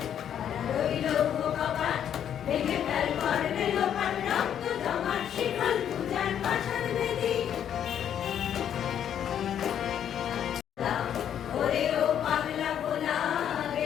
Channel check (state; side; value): quieter; right; 9.4 dB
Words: তারা রইল কপাট, ভেঙে ফেল করবে লোপাট, রক্ত জমাট শিকল পূজার পাষাণ বেদী। ওরে ও পাগলা ভোলা,